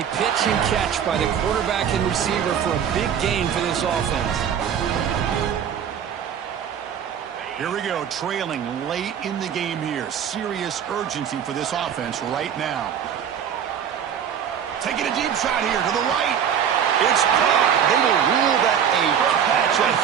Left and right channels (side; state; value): left; quieter; 8.5 dB